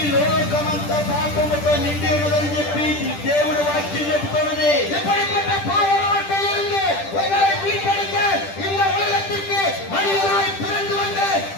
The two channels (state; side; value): late; right; 10 ms